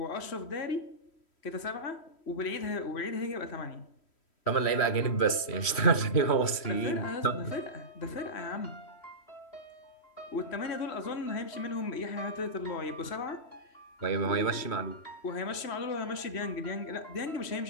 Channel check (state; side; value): late; right; 3.1 ms